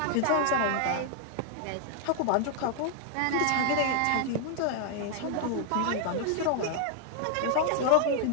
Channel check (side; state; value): both; different; correlation 0.00